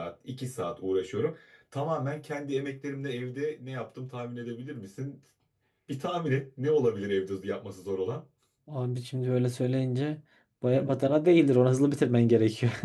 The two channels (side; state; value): both; identical; correlation 1.00